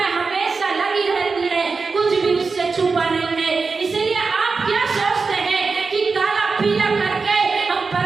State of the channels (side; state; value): left; quieter; 4.5 dB